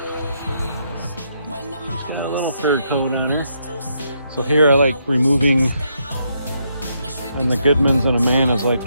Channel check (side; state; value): both; inverted; correlation -0.77